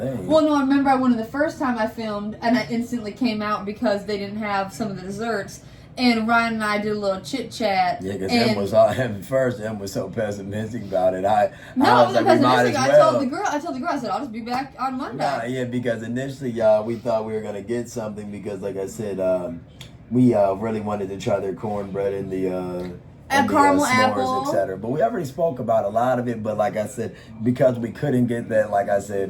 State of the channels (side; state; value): both; identical; correlation 1.00